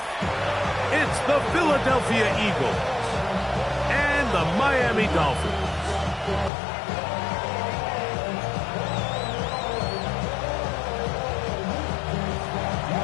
It's the Philadelphia Eagles and the Miami Dolphins.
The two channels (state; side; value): drops out; right; at 6.5 s